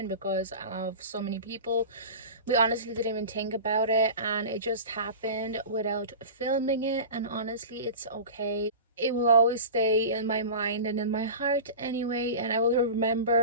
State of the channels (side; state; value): both; inverted; correlation -0.32